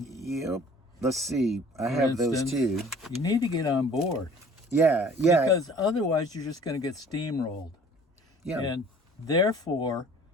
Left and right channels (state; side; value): normal; both; correlation 0.50